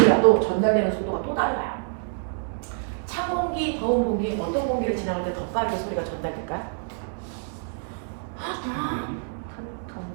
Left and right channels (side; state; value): left; silent; digital silence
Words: 전달되는 속도가 또 달라요. 찬 공기, 더운 공기, 어떤 공기를 지나갈 때 더 빠르게 소리가 전달될까요?